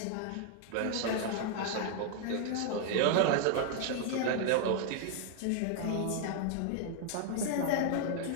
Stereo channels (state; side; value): different; both; correlation 0.00